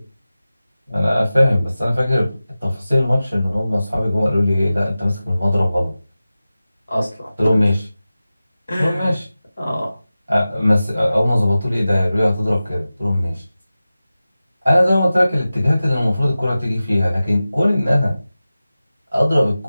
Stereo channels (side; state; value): both; inverted; correlation -0.95